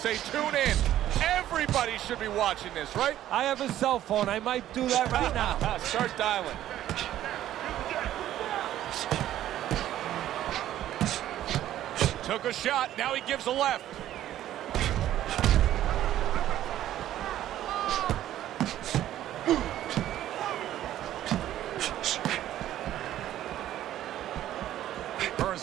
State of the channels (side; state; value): left; quieter; 12.6 dB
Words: tune in. Everybody should be watching this, right? I have a cell phone. I might do that right now. Start dialing. Took a shot. Now he gives a left. Hearns